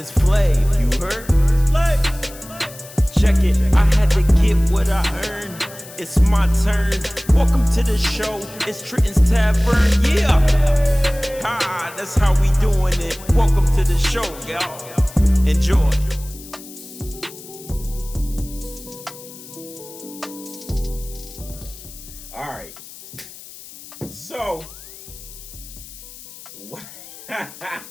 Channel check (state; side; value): noise; left; hiss, 17 dB below the sound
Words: Flav, you heard? It's Flav. Check it, I had to get what I earned. It's my turn. Welcome to the show. It's Trenton's Tavern. Yeah. Ha, that's how we doing it. Welcome to the show, y'all. Enjoy. All right. So,